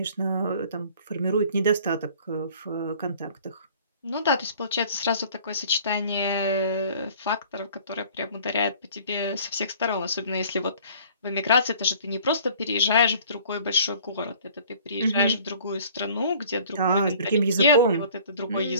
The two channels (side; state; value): both; inverted; correlation -0.51